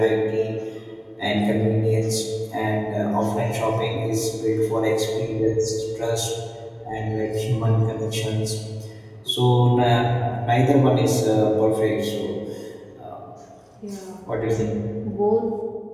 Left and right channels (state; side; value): identical; both; correlation 1.00